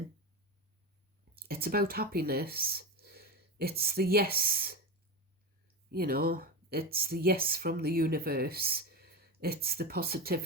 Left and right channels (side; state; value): both; normal; correlation 0.20